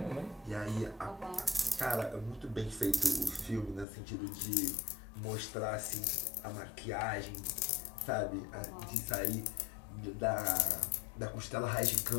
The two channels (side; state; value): right; drops out; at 3.9 s